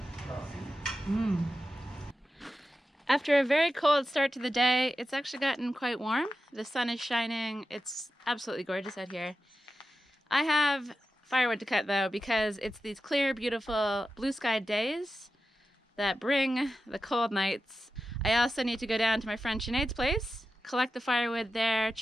After a very cold start to the day, it's actually gotten quite warm. The sun is shining. It's absolutely gorgeous out here. I have firewood to cut though, because it's these clear, beautiful, blue-skied days that bring the cold nights. I also need to go down to my friend Sinead's place, collect the firewood there,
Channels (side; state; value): both; normal; correlation 0.91